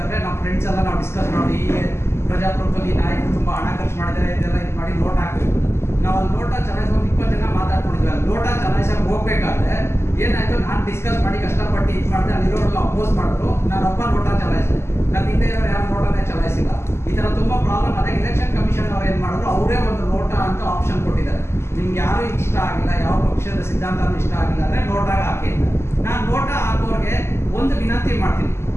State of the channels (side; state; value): right; late; 0.12 ms